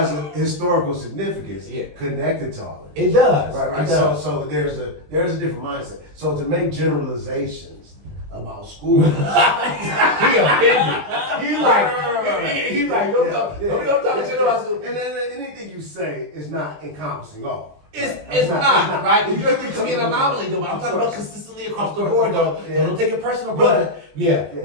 a historical significance connected to all of it. It does. Right. It does. So there's a different mindset. So to make generalizations about school, he offended. He's like, don't talk shit about school. And then anything you say is not encompassing all. It's not, right? You're to be an anomaly, though. But I'm talking about consistently across the board, though. So don't take it personal, brother.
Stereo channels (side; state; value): left; late; 20 ms